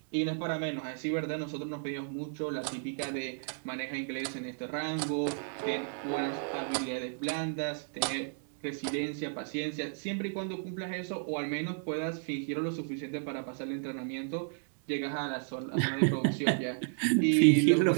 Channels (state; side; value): silent; left; digital silence